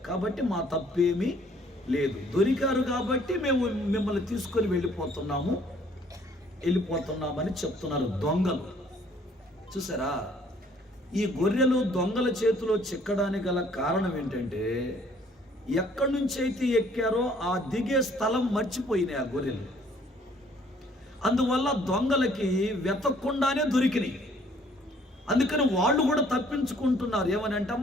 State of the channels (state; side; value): normal; both; correlation 0.60